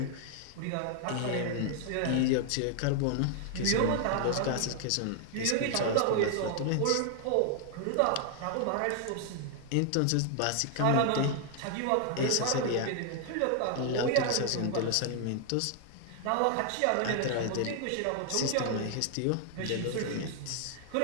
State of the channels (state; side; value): different; both; correlation 0.00